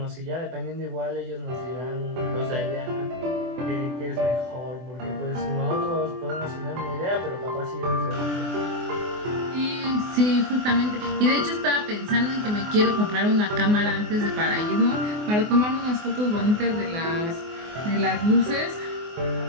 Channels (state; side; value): late; left; 24 ms